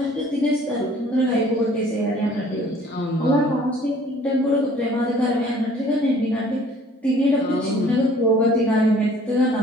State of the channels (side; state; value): both; normal; correlation 0.54